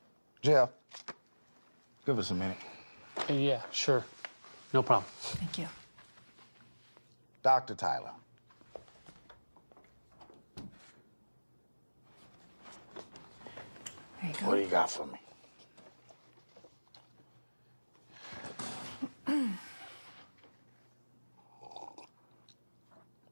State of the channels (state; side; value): inverted; both; correlation -1.00